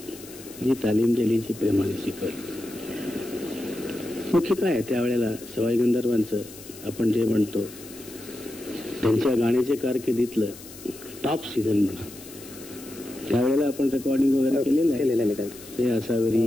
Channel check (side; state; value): left; noise; hiss, 17 dB below the sound